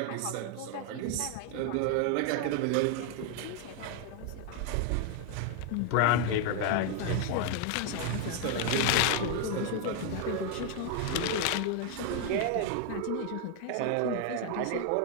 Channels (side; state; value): both; different; correlation 0.01